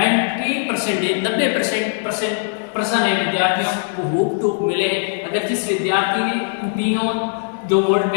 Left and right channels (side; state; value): right; silent; digital silence